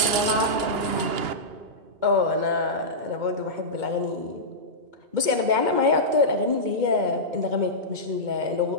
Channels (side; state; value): left; late; 2.2 ms